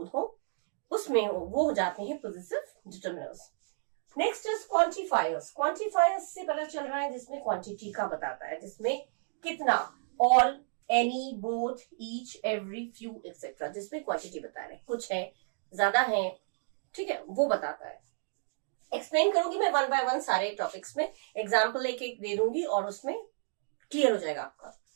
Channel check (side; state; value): left; silent; digital silence